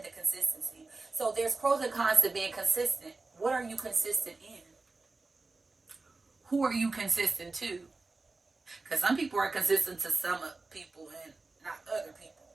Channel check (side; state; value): left; quieter; 3.6 dB